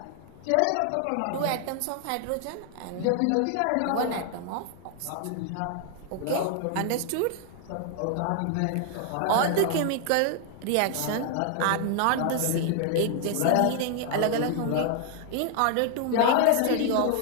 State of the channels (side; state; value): both; different; correlation 0.00